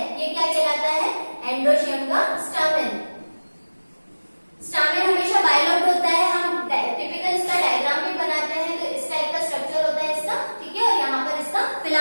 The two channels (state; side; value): inverted; both; correlation -1.00